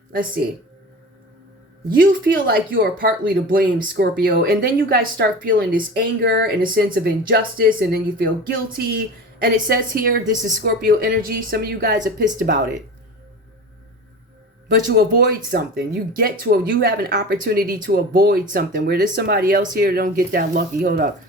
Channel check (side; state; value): both; normal; correlation 0.33